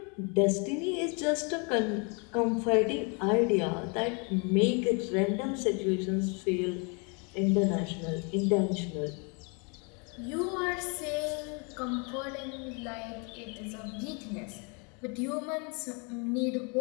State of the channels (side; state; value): right; quieter; 34.2 dB